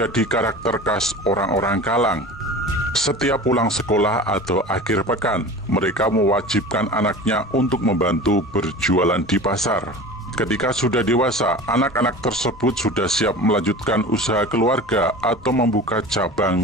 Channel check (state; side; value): normal; both; correlation 0.35